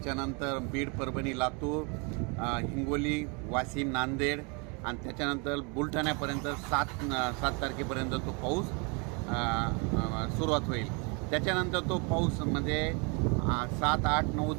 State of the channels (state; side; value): quieter; left; 32.7 dB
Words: बीड, परभणी, लातूर, हिंगोली, वाशिम, नांदेड आणि त्याच्यानंतर बुलढाण्यापर्यंत 7 तारखेपर्यंत तो पाऊस सुरुवात होईल. त्याच्यानंतर तो पाऊस म्हणजे 7, 8, 9,